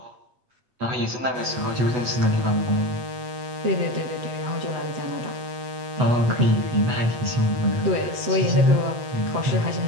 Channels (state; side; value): late; left; 8.1 ms